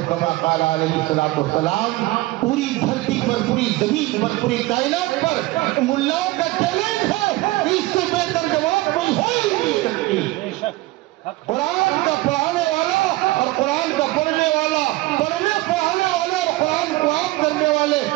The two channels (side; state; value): left; quieter; 19.3 dB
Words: کما قال علیہ الصلوۃ والسلام۔ پوری دھرتی پر، پوری زمین پر، پوری کائنات پر ملاؤں کا چیلنج ہے، اس سے بہتر جواب کوئی ہو ہی نہیں سکتی۔ قرآن کا پڑھانے والا اور قرآن کا پڑھنے والا، پڑھنے پڑھانے والے اور قرآن کو عام کرنے والے،